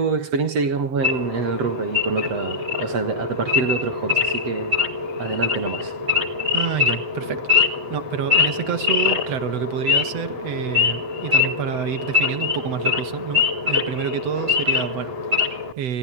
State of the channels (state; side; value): late; left; 7.9 ms